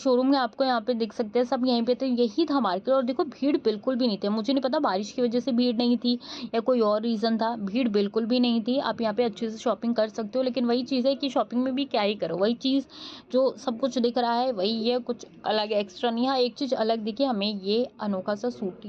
में आपको यहाँ पे दिख सकते हैं, सब यहीं पे। तो यही था मार्केट। और देखो भीड़ बिल्कुल भी नहीं थी। मुझे नहीं पता बारिश की वजह से भीड़ नहीं थी या कोई और रीज़न था, भीड़ बिल्कुल भी नहीं थी। आप यहाँ पे अच्छे से शॉपिंग कर सकते हो। लेकिन वही चीज़ है कि शॉपिंग में भी क्या ही करो, वही चीज़ जो सब कुछ दिख रहा है वही है, कुछ अलग एक्स्ट्रा नहीं। हाँ, एक चीज़ अलग दिखी हमें, ये अनोखा सा सूट,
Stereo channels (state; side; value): identical; both; correlation 1.00